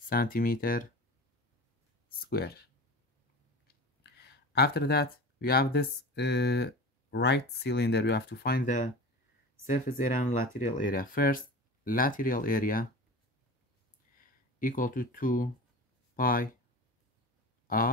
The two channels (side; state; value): both; normal; correlation 0.33